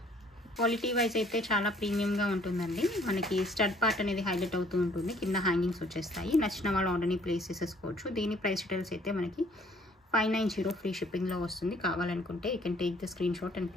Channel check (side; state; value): both; normal; correlation 0.60